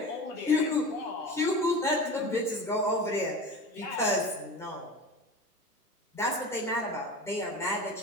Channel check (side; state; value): both; normal; correlation 0.32